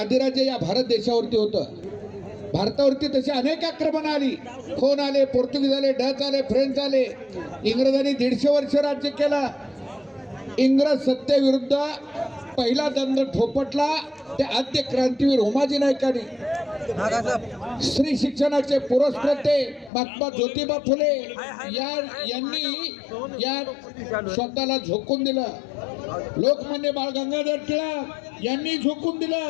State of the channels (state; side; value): drops out; right; at 19.9 s